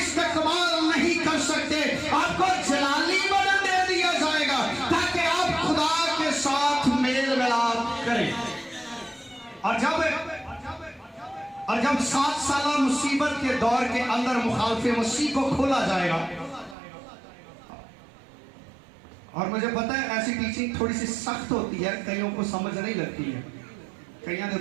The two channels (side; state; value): left; drops out; at 16.8 s